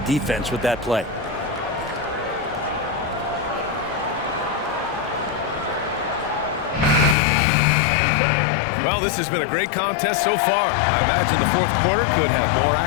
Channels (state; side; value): drops out; right; at 7.2 s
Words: with that play. Well, this has been a great contest so far. I imagine the fourth quarter could have more